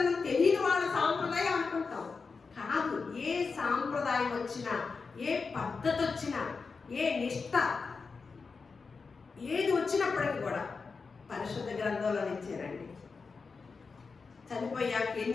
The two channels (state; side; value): quieter; right; 4.8 dB